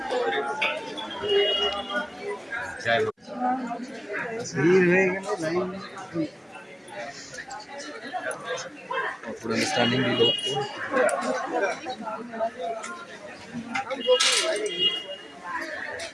জয় মা। ভিড় হয়ে গেল লাইন পুরো স্ট্যান্ডিং দিল।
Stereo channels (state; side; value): identical; both; correlation 1.00